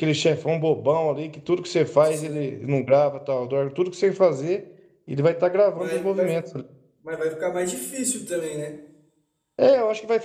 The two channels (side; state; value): both; identical; correlation 1.00